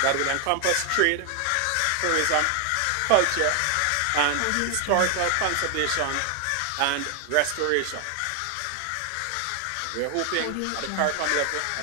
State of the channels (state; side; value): different; both; correlation 0.00